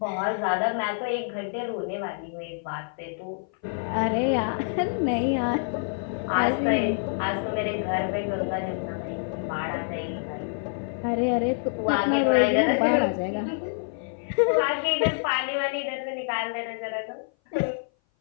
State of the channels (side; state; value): right; silent; 57 dB below the other